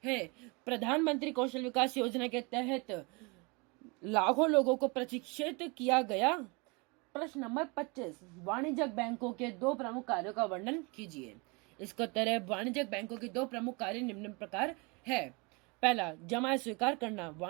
हैं। प्रधानमंत्री कौशल विकास योजना के तहत लाखों लोगों को प्रशिक्षित किया गया। प्रश्न नंबर 25, वाणिज्यिक बैंकों के 2 प्रमुख कार्यों का वर्णन कीजिए। इसका उत्तर है, वाणिज्यिक बैंकों के 2 प्रमुख कार्य निम्न प्रकार है। पहला, जमा स्वीकार करना।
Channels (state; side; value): quieter; left; 29.1 dB